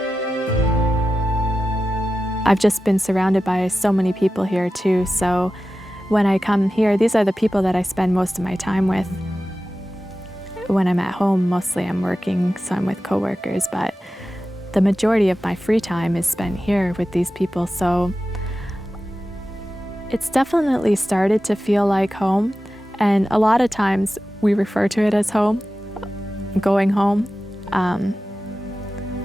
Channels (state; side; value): normal; both; correlation 0.93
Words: I've just been surrounded by so many people here too, so when I come here, these are the people that I spend most of my time with. When I'm at home, mostly I'm working, so I'm with coworkers, but the majority of my free time is spent here with these people, so it's definitely started to feel like home, and a lot of times we refer to it as home, going home.